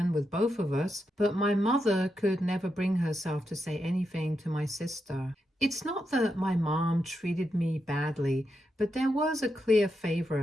with both of us, but my mother could never bring herself to say anything to my sister. It's not that my mom treated me badly, but there was a clear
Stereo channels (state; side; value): normal; both; correlation 0.85